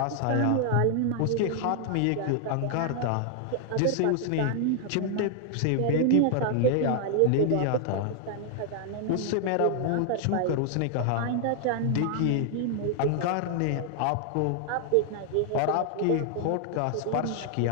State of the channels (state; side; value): different; both; correlation 0.00